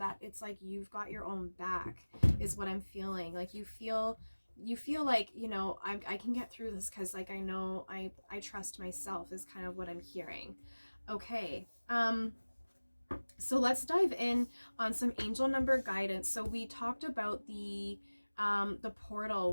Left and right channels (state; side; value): inverted; both; correlation -1.00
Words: it's like you've got your own back is what I'm feeling. Like you feel like, you know, I can get through this because like I know I trust myself is kind of what I'm hearing. Okay, so let's dive in on some angel number guidance. So we talked about the portal.